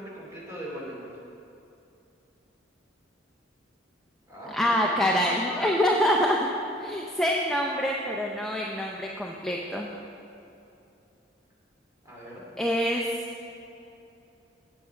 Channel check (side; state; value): both; normal; correlation 0.55